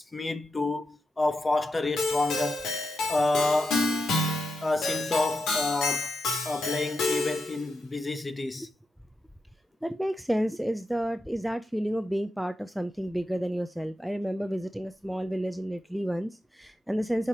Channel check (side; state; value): both; normal; correlation 0.87